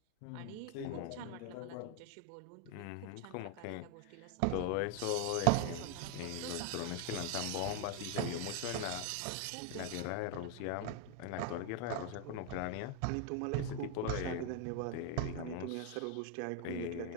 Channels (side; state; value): both; different; correlation 0.00